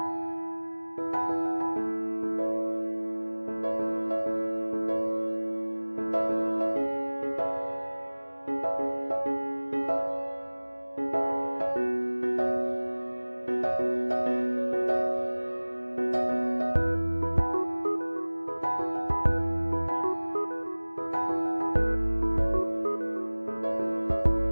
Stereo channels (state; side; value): inverted; both; correlation -1.00